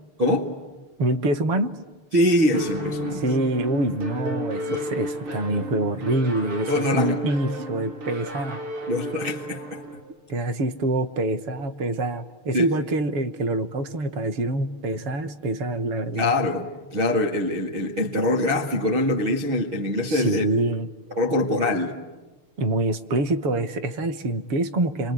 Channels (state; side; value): late; left; 6.6 ms